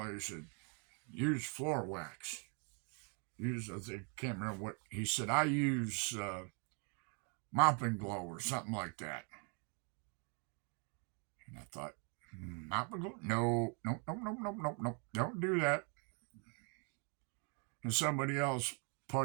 he said, use floor wax. I can't remember what he said. I use mopping glow or something like that. And I thought, mopping glow? No, don't do that. And somebody else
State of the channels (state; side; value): quieter; left; 37.9 dB